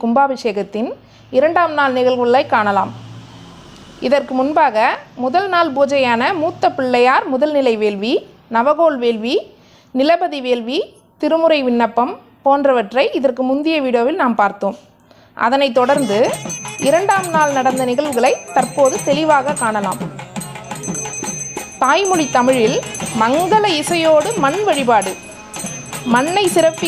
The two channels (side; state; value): both; identical; correlation 1.00